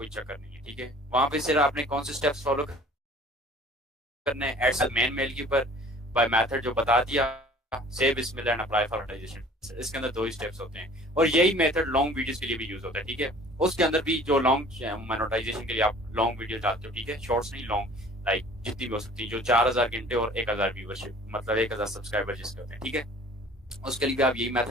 चक्कर नहीं है। ठीक है, वहां पे सिर्फ आपने कौन से स्टेप्स फॉलो करने हैं, एड मेन मेल के ऊपर बाय मेथड जो बता दिया, सेव बिस्मिल्लाह एंड अप्लाई फॉर मोनेटाइजेशन। इसके अंदर 2 ही स्टेप्स होते हैं, और यही मेथड लॉन्ग वीडियोस के लिए भी यूज होता है। ठीक है, उसके अंदर भी जो लॉन्ग मोनेटाइजेशन के लिए आप लॉन्ग वीडियो डालते हो, ठीक है, शॉर्ट्स नहीं, लॉन्ग, लाइक जितनी भी हो सकती है, जो 4000 घंटे और 1000 व्यूवरशिप, मतलब 1000 सब्सक्राइबर जिसके होते हैं। ठीक है, उसके लिए भी आप यही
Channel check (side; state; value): both; normal; correlation 0.49